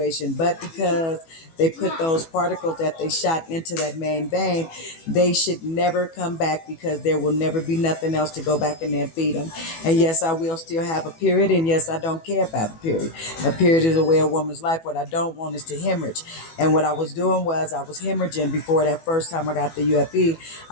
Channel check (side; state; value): right; late; 18 ms